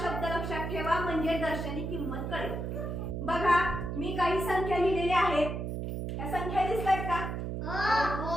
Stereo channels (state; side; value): noise; right; hum, 4 dB below the sound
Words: शब्द लक्षात ठेवा, म्हणजे दर्शनी किंमत कळेल। बघा, मी काही संख्या लिहिलेल्या आहेत, या संख्या दिसतायत का?